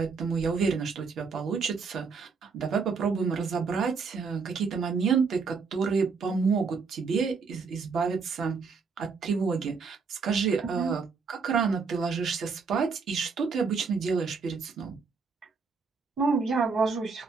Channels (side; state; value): left; quieter; 5.0 dB